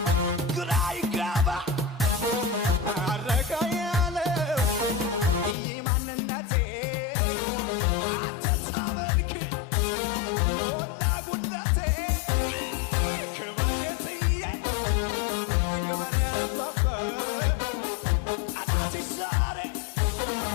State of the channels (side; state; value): right; drops out; at 5.6 s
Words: ግራ ይጋባ አረጋ ያለው ይህ ማንነቴ አንተን ሳመልክ ሞላ ጉድለቴ ክበር ጌትዬ ክበር አባባ ጠላቴ ዛሬ